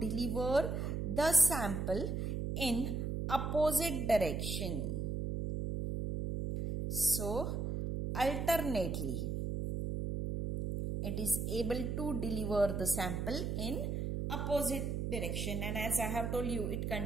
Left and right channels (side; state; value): right; noise; hum, 2 dB below the sound